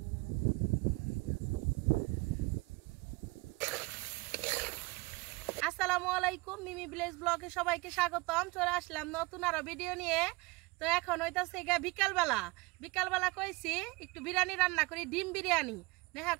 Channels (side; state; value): left; quieter; 24.3 dB